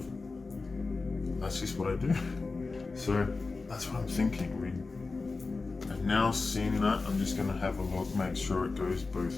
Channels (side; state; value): right; quieter; 3.9 dB